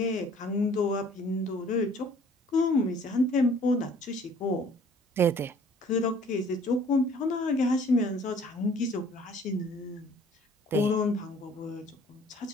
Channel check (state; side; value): normal; both; correlation 0.55